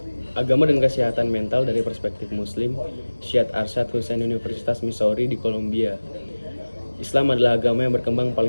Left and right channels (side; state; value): both; inverted; correlation -1.00